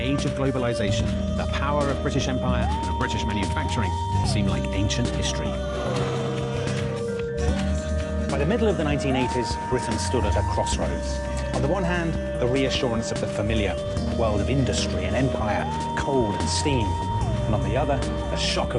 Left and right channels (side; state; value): both; identical; correlation 1.00